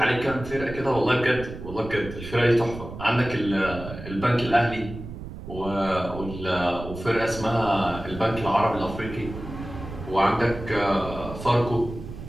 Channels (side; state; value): right; noise; rumble, 11 dB below the sound